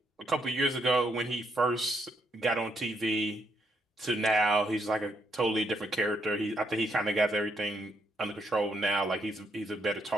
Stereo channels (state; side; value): normal; both; correlation 0.75